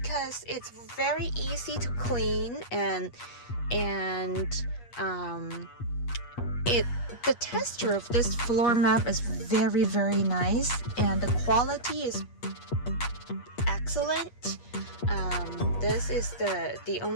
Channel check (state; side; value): late; right; 8.4 ms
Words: it's very easy to clean, and the texture of this floor mat is very, very nice, and the quality is excellent. This is the